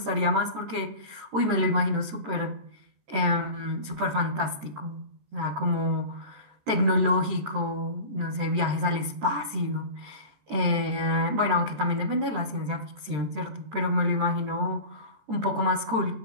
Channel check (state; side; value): late; left; 13 ms